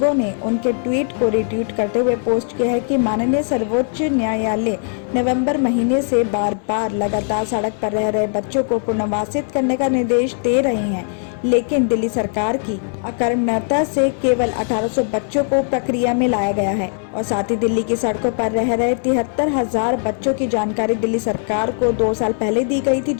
ने उनके ट्वीट को रिट्वीट करते हुए पोस्ट किया है कि माननीय सर्वोच्च न्यायालय नवंबर महीने से बार बार लगातार सड़क पर रह रहे बच्चों को पुनर्वासित करने का निर्देश दे रहे हैं, लेकिन दिल्ली सरकार की अकर्मण्यता से केवल 1800 बच्चों को प्रक्रिया में लाया गया है। और साथ ही दिल्ली की सड़कों पर रह रहे 73,000 बच्चों की जानकारी दिल्ली सरकार को 2 साल पहले दी गई थी,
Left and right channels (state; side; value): silent; right; 58 dB below the other